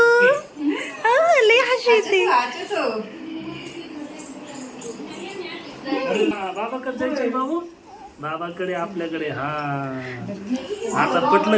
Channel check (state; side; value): identical; both; correlation 1.00